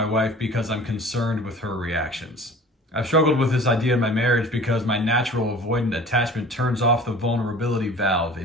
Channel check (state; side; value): normal; both; correlation 0.43